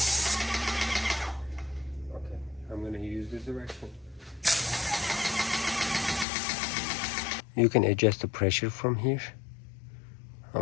Okay, I'm gonna use this direction. You can adjust the pressure from here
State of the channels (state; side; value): drops out; right; at 6.2 s